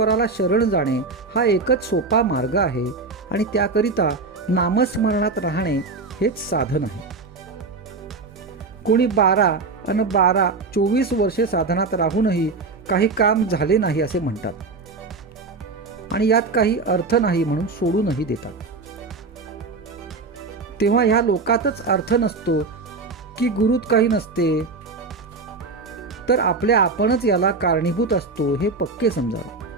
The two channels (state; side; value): quieter; left; 4.0 dB